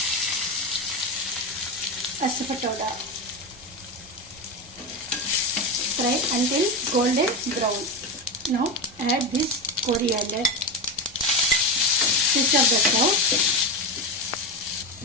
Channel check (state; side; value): normal; both; correlation 0.17